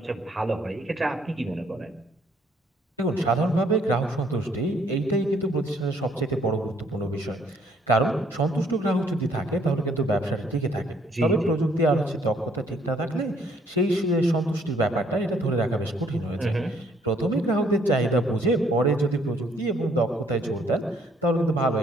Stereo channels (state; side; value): normal; both; correlation 0.65